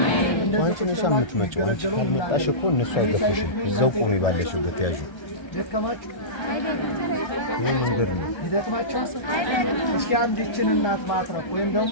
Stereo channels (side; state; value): right; late; 1.3 ms